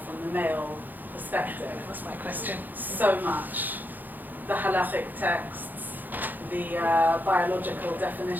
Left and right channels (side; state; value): left; late; 0.086 ms